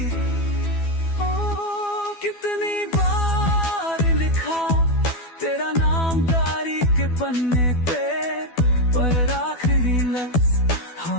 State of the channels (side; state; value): right; late; 12 ms